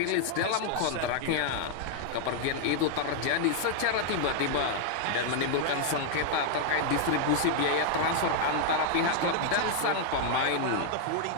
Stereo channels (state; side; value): different; both; correlation 0.00